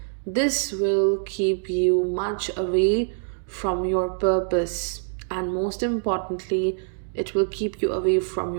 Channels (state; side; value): silent; left; digital silence